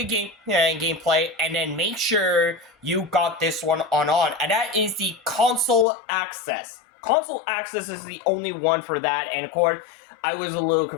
and then make sure you got this one on, and that is the console access. Console access is the only one for that, and of course, I was a little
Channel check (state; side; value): drops out; right; at 5.9 s